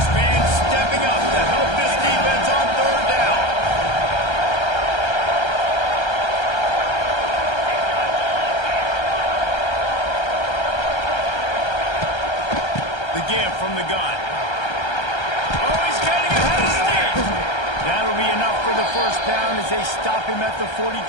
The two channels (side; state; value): right; late; 1.3 ms